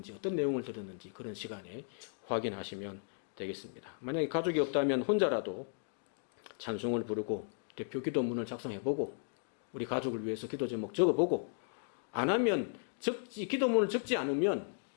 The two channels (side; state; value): right; silent; digital silence